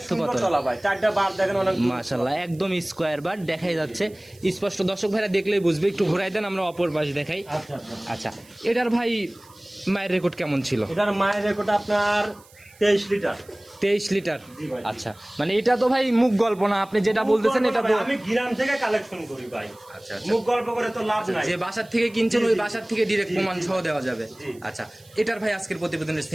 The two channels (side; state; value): right; noise; hiss, 26 dB below the sound